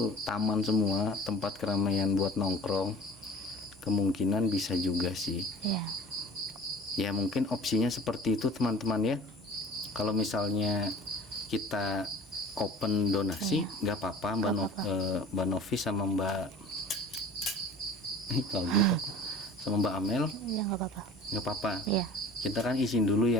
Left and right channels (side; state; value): both; normal; correlation 0.43